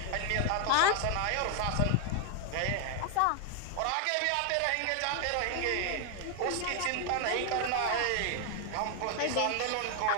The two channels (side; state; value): both; different; correlation 0.01